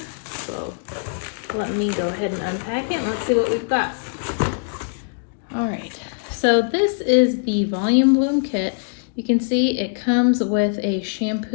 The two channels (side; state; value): right; silent; digital silence